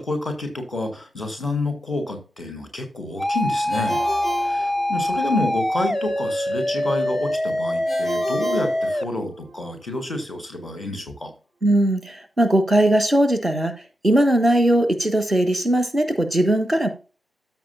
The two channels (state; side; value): normal; both; correlation 0.87